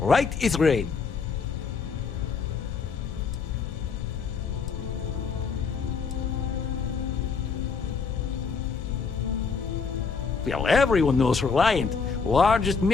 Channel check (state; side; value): quieter; right; 5.3 dB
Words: is rain. Well, everyone knows Reliant, largest